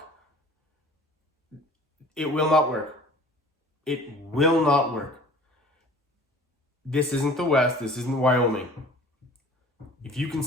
It will not work. It will not work. This isn't the West. This isn't Wyoming. If you can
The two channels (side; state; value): both; normal; correlation 0.47